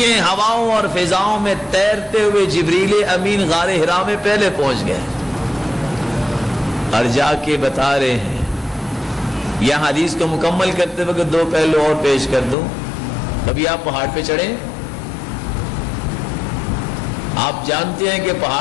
ہے، ہواؤں اور فضاؤں میں تیرتے ہوئے جبریل امین غار حرا میں پہلے پہنچ گئے اور جا کے بتا رہے ہیں۔ یہاں حدیث کو مکمل کرتے وقت دو پہلو اور پیش کر دوں۔ کبھی آپ پہاڑ پہ چڑھیں، آپ جانتے ہیں کہ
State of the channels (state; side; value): drops out; right; at 12.6 s